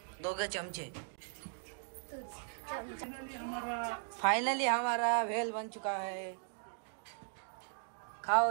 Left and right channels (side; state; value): left; silent; digital silence